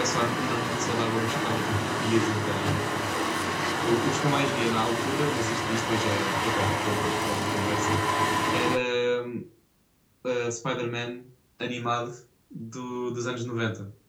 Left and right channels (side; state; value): both; identical; correlation 1.00